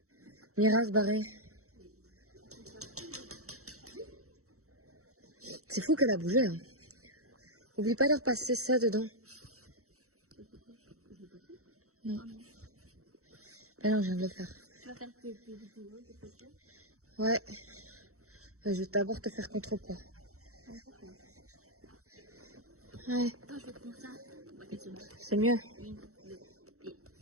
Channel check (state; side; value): late; left; 0.64 ms